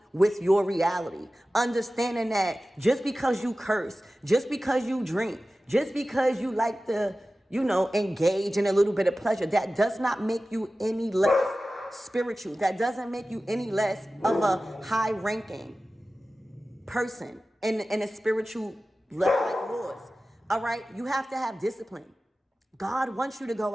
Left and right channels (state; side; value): normal; both; correlation 0.95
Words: with your reality. Understanding that just because you curse, just because you drink, just because you like to, engage in a little bit of pleasure, that does not make you any less spiritual. That doesn't make you any less of a high ranking person in a spiritual level like yours. All right, you have to have discipline. God wants you to go